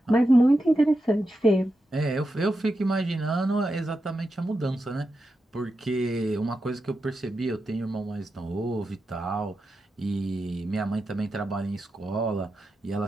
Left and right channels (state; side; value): normal; both; correlation 0.89